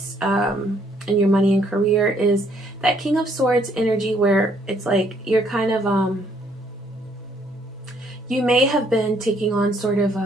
in your money and career, is that King of Swords energy, where it's like you're kind of, you may have been taking on sort of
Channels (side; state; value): both; normal; correlation 0.67